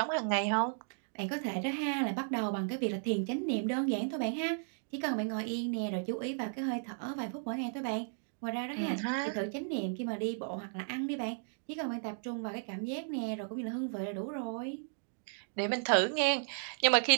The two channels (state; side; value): silent; left; digital silence